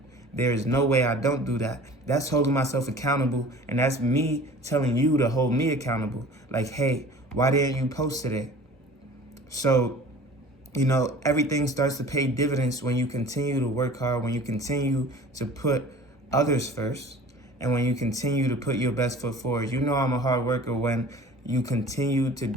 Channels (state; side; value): normal; both; correlation 0.44